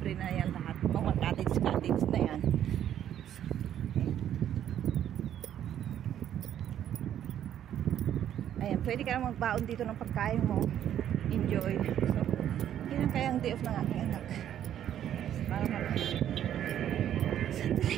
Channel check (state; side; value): quieter; left; 10.6 dB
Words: na yan lahat. Mga cottage na yan. Ayan, pwede ka lang magbaon dito ng pagkain mo. Enjoy. So, yun ang kayang day off ng aking anak. Para sandali.